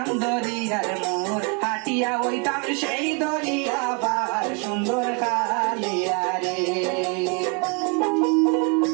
দরিয়ার মোর হাটিয়া হইতাম সেই দরিয়া পার সুন্দর খালিয়া রে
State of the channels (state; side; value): quieter; left; 35.1 dB